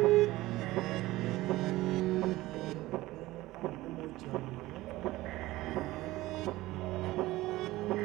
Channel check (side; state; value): left; quieter; 17.9 dB